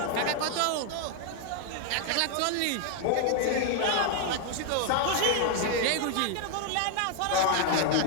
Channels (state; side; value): different; both; correlation 0.00